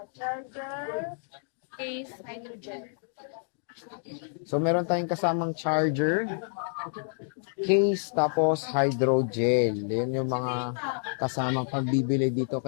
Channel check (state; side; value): silent; right; digital silence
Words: charger, case, hydrogen. So meron tayong kasamang charger, case, tapos hydrogel. Yan yung mga kasama pagbibili dito